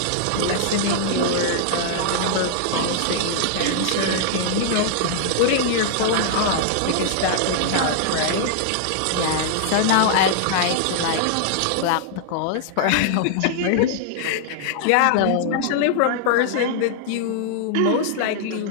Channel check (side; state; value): both; different; correlation -0.01